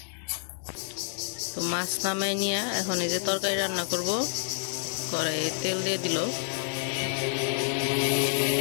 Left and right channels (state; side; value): silent; right; 57 dB below the other